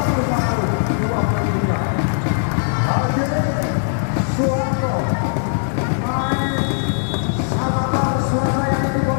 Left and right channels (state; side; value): silent; right; digital silence